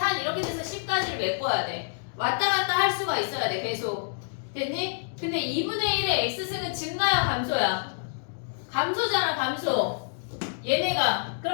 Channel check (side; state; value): right; silent; digital silence